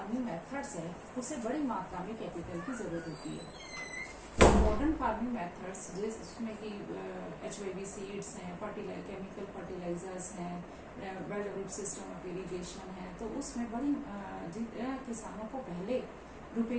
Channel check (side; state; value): both; identical; correlation 1.00